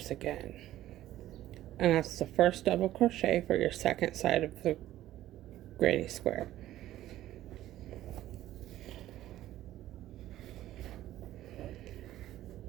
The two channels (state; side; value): quieter; left; 14.0 dB